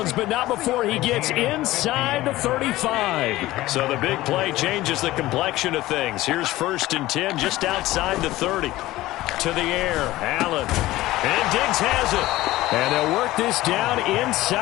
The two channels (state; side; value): quieter; right; 17.0 dB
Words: but not before he gets inside the 35. So the big play changes the complexion of things. Here's 1st and 10 just outside the 30. To the air, Allen. And Diggs has it. And they'll work this down